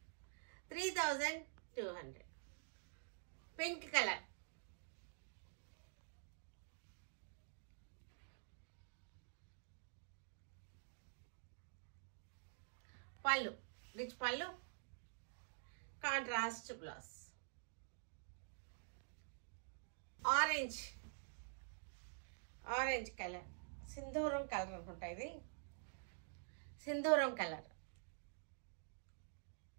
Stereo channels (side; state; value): left; silent; digital silence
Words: 3200. పింక్ కలర్, పళ్ళు రిచ్ పళ్ళు, contrast blouse. Orange, orange colour, సింధూరం కలర్ అనుకుంటా. ఇది సింధూరం కలర్.